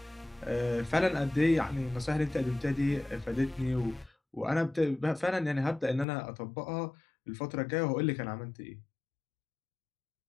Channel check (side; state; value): right; drops out; at 6.1 s